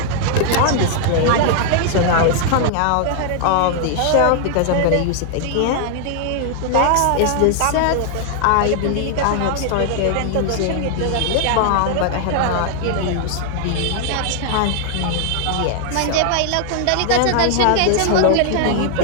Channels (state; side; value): different; both; correlation 0.00